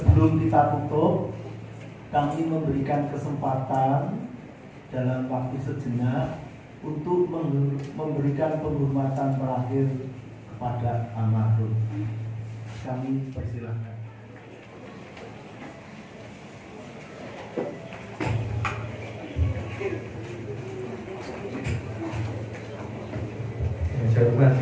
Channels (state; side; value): identical; both; correlation 1.00